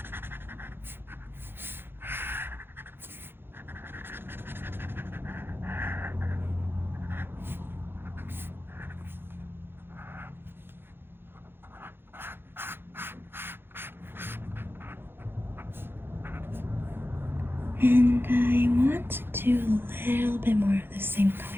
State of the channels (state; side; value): late; left; 0.10 ms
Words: And I want to do a little bit more of the same color